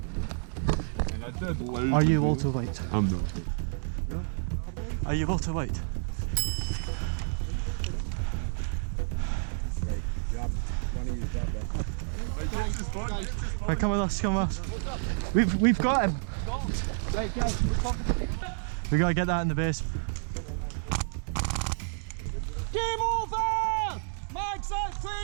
Are you Walter White? I'm not. Are you Walter White? Right, come with us, come with us. We've got him. Right, guys, We gotta get that in the base. game over! Mags out, clear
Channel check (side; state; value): left; silent; digital silence